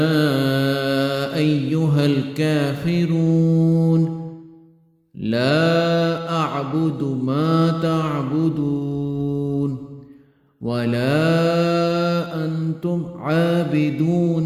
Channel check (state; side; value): identical; both; correlation 1.00